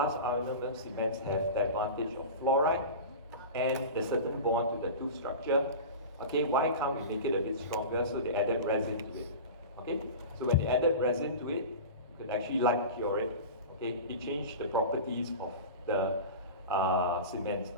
ionomer cements have the advantage of fluoride and the certain bond to the tooth structure. Okay, why can't we make it a bit stronger? So they added resin to it. Okay, so when they added resin to it, you could actually light cure it. Okay, it changed the properties of the cements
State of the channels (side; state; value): both; inverted; correlation -0.30